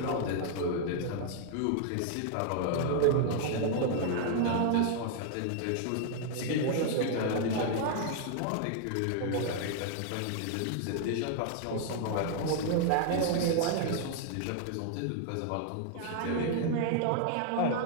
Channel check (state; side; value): different; both; correlation 0.00